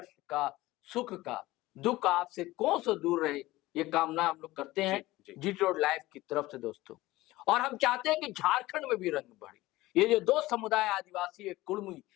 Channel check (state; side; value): quieter; right; 18.2 dB